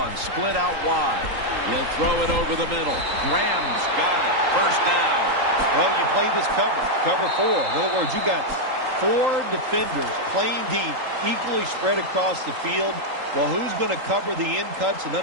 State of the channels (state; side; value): late; left; 3.8 ms